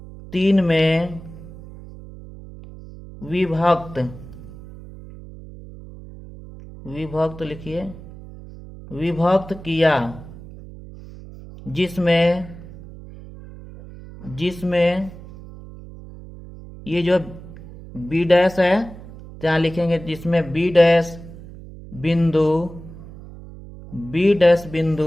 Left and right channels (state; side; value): noise; right; hum, 16 dB below the sound